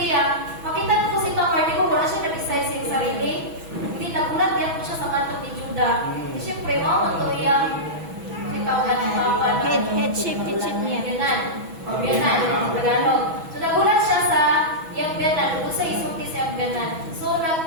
makita ko si Tamar, di ko wala siya nag-decide sa sarili. Hindi nagulat yan ko siya sa kanto ni Judah. Siyempre, mo to yung ikaw ka ng papan. Headship niya. Biyanan, Tagalog. So, nagulat siya sa yung biyanan, kung sa isulti sa yung biyanan. So,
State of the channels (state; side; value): late; left; 6.1 ms